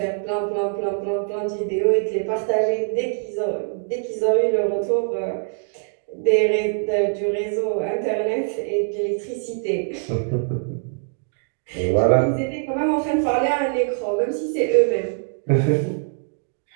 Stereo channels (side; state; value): left; silent; digital silence